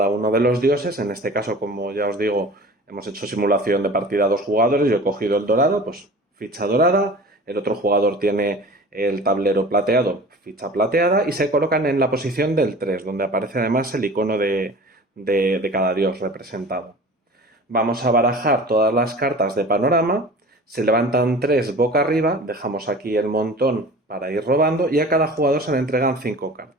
uno de los dioses. En este caso, como ya os digo, hemos hecho simulación de partida a 2 jugadores. Yo he cogido el dorado, pues ficha dorada. El otro jugador tiene el tablero plateado, ficha plateada. Y se colocan en la posición del 3, donde aparece además el icono de cada dios representado. Vamos a barajar todas las cartas de panorama. Se levantan 3 boca arriba. Dejamos aquí el montón para ir robando. Y a cada jugador se le entregan 5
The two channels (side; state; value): both; normal; correlation 0.40